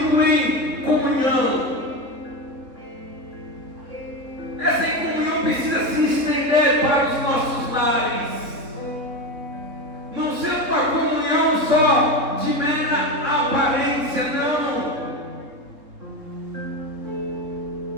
em comunhão. Essa comunhão precisa se estender para os nossos lares. Não ser uma comunhão só de mera aparência, não.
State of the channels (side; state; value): left; late; 3.7 ms